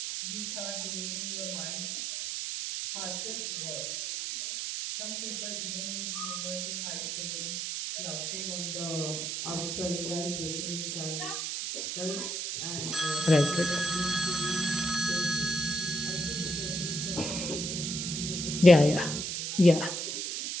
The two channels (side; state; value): right; noise; hiss, 2 dB below the sound